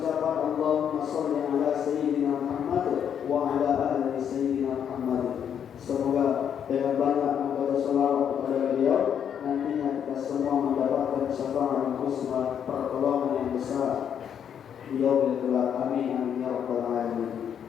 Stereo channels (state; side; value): quieter; right; 8.5 dB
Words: ucapan Allahumma shalli ala sayyidina Muhammad wa ala ali sayyidina Muhammad. Semoga dengan banyak membaca salawat kepada beliau, nantinya kita semua mendapatkan syafaat husna, pertolongan yang besar di yaumil qiyamah. Amin amin ya rabbal alamin.